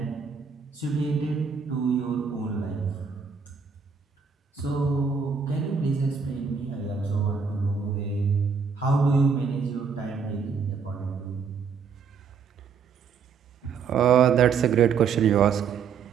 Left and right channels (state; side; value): quieter; left; 6.0 dB